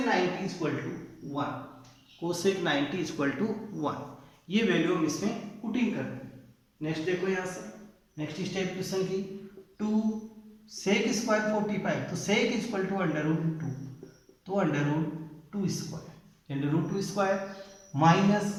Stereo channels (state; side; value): identical; both; correlation 1.00